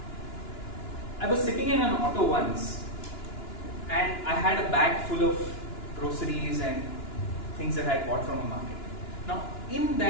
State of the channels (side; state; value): right; late; 2.9 ms